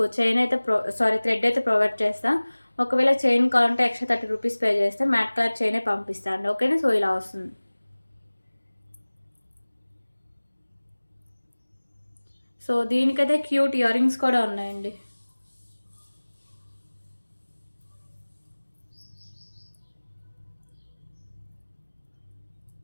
చైన్ అయితే థ్రెడ్ అయితే ప్రొవైడ్ చేస్తాను. ఒకవేళ చైన్ కావాలంటే ఎక్స్ట్రా 30 రూపీస్ పే చేస్తే మ్యాట్ కలర్ చైనే పంపిస్తాను. ఓకేనా. సో ఇలా వస్తుంది. సో దీనికైతే క్యూట్ ఇయర్ రింగ్స్ కూడా ఉన్నాయండి.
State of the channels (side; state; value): both; inverted; correlation -1.00